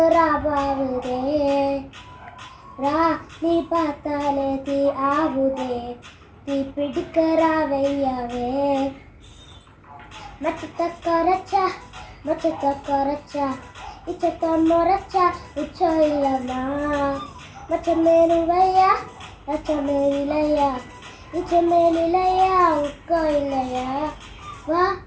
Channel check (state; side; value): identical; both; correlation 1.00